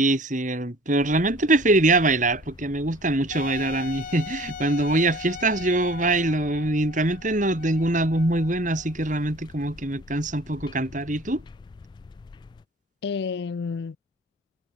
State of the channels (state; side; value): normal; both; correlation 0.48